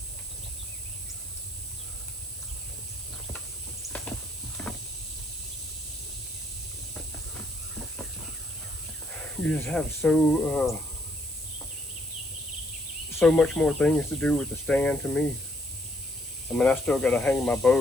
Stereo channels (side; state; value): right; noise; hiss, 14 dB below the sound